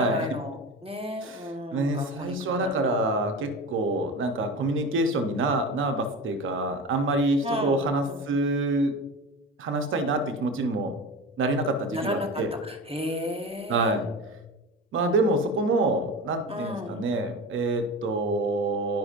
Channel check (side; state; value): both; normal; correlation 0.29